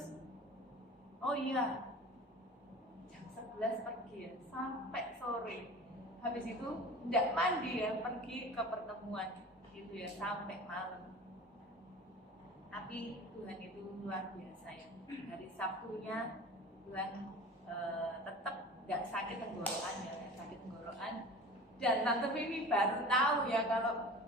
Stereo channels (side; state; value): both; normal; correlation 0.38